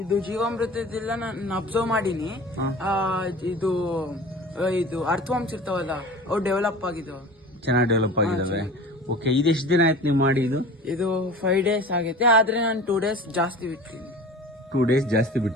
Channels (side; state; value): both; normal; correlation 0.39